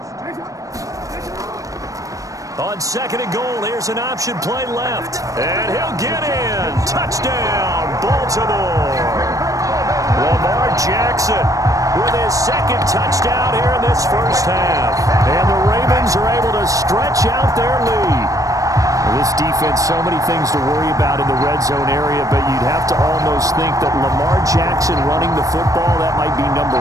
On 2nd and goal, here's an option play left. And he'll get in. Touchdown, Baltimore. Lamar Jackson with his 2nd touchdown here in this first half. And the Ravens are able to stretch out their lead. This defense, so many things to worry about in the red zone area, but you'd have to almost think that Lamar Jackson running the football, that might be number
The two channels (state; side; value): late; left; 0.16 ms